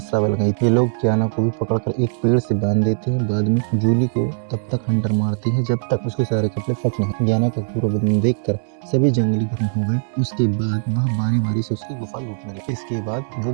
बन गई। ये लोग ज्ञाना को भी पकड़कर एक पेड़ से बांध देते हैं। बाद में जूली को तब तक हंटर मारती है जब उसके सारे कपड़े फट नहीं। ज्ञाना का पूरा बदन देखकर सभी जंगली गर्म हो गए। उसके बाद वह बारी बारी से उसकी गुफा लूटने लगे। इसके बाद वो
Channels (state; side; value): silent; left; digital silence